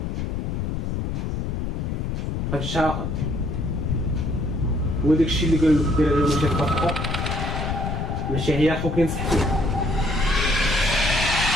هادشي عاقل. هو داكشي اللي قال لك دير عليه ماشي تطبقو، ماشي هي اخوك ينصح فيه.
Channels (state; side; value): noise; left; rumble, 2 dB below the sound